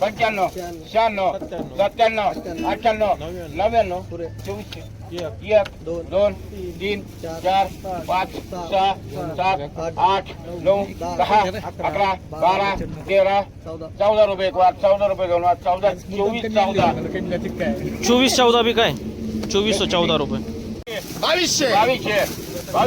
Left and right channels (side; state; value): both; identical; correlation 1.00